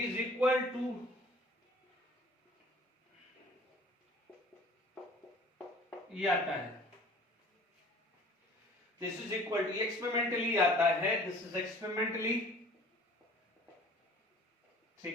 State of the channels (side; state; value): both; normal; correlation 0.49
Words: इक्वल टू ये आता है, this is equal to, experimentally आता है, दिस इज एक्सपेरिमेंटली।